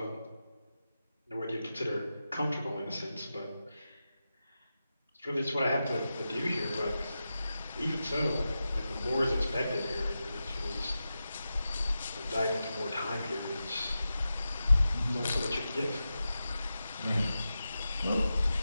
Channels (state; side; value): inverted; both; correlation -0.91